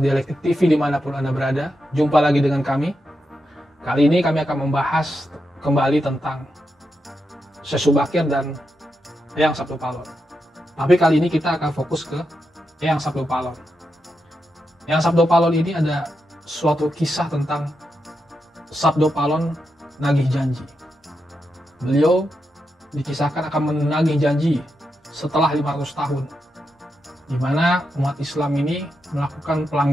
TV dimanapun Anda berada, jumpa lagi dengan kami. Kali ini kami akan membahas kembali tentang Syekh Subakir dan Eyang Sabdo Palon. Tapi kali ini kita akan fokus ke Eyang Sabdo Palon. Eyang Sabdo Palon ini ada suatu kisah tentang Sabdo Palon nagih janji. Beliau dikisahkan akan menagih janji setelah 500 tahun, di mana umat Islam ini melakukan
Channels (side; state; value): both; normal; correlation 0.86